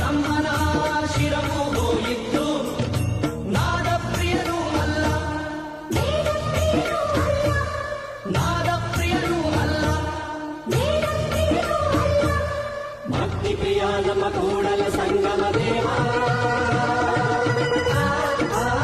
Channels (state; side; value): identical; both; correlation 1.00